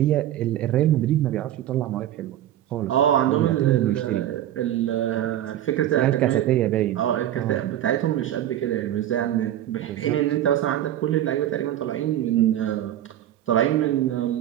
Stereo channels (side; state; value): left; quieter; 12.3 dB